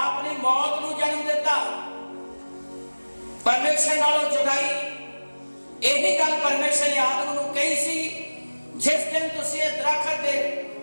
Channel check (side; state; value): both; inverted; correlation -1.00